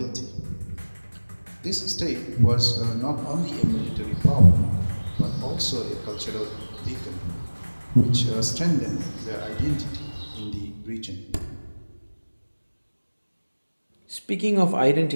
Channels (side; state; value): both; inverted; correlation -1.00